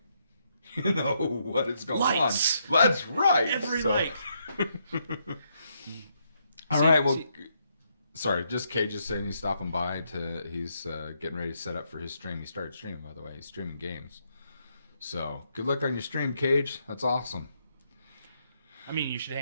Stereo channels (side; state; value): both; inverted; correlation -0.77